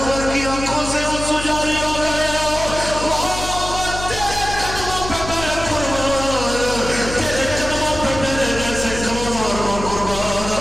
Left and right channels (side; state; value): left; noise; hum, 8 dB below the sound